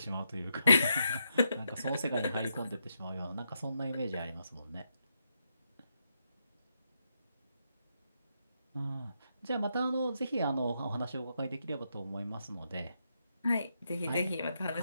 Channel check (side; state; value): both; inverted; correlation -0.81